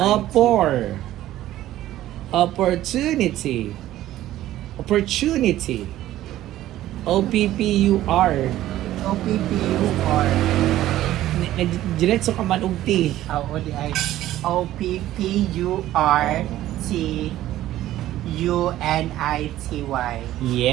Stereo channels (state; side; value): quieter; left; 14.1 dB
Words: Opportunity. Opportunity. O-P-P-U-R. O-P-P-U-R. Diretso ka man og T. O-D-I. O-P-P-U-R-T-U-N-I-T-Y.